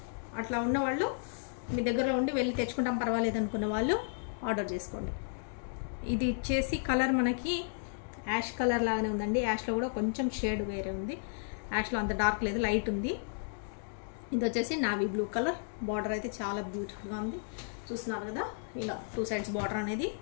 అట్లా ఉన్నవాళ్ళు మీ దగ్గరలో ఉండి వెళ్ళి తెచ్చుకుంటాం పర్వాలేదు అనుకున్న వాళ్ళు ఆర్డర్ చేసుకోండి. ఇది వచ్చేసి కలర్ మనకి యాష్ కలర్ లాగానే ఉందండి. యాష్లో కూడా కొంచెం షేడ్ వేరే ఉంది. యాష్లో అంత డార్క్ లేదు, లైట్ ఉంది. ఇది వచ్చేసి నావీ బ్లూ కలర్. బార్డర్ అయితే చాలా బ్యూటిఫుల్గా ఉంది. చూస్తున్నారు కదా, ఇలా 2 సైడ్స్ బార్డర్ అనేది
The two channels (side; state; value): right; silent; digital silence